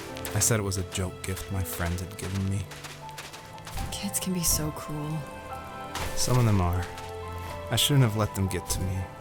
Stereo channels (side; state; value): both; identical; correlation 1.00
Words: I said it was a joke gift my friends had given me. Kids can be so cruel. Some of them are. I shouldn't have let them get to me,